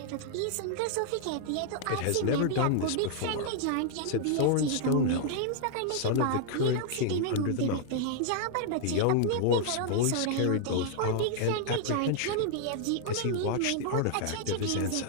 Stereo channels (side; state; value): both; different; correlation -0.01